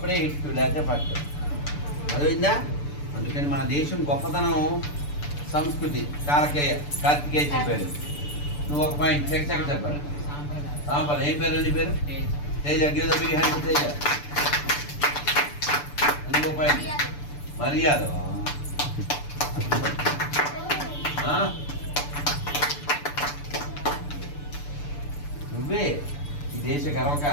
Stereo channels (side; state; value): right; late; 6.9 ms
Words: హిట్టు, లేకపోతే పట్టు. అర్థమైందా? అందుకని మన దేశం గొప్పతనం సంస్కృతి. కార్తికేయ చెప్పాడు. నువ్వు ఒక పాయింట్ సెకండ్ చెప్పాలి. సాంపల్ ఏం పేరు? నీ పేరు Teja. Give the big hand Teja. నువ్వు పాయింట్ మర్యాద. నువ్వే ఈ దేశ